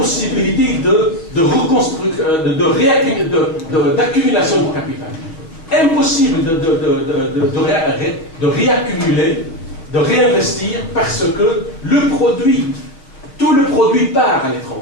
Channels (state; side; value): late; right; 6.2 ms